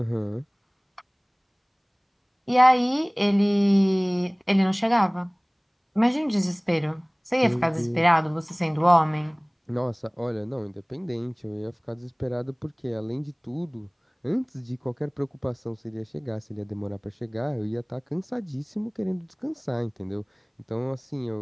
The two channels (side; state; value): both; identical; correlation 1.00